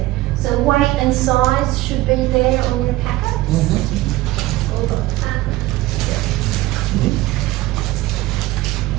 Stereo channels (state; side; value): quieter; left; 17.6 dB